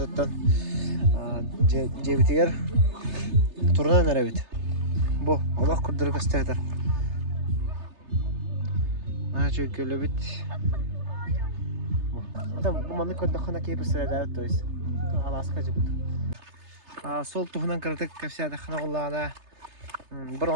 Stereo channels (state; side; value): late; left; 3.3 ms